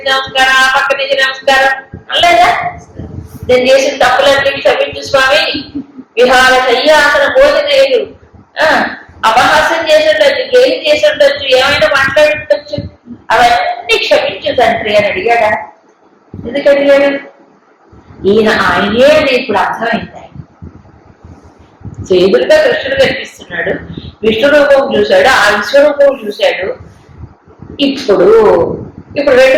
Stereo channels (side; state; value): both; identical; correlation 1.00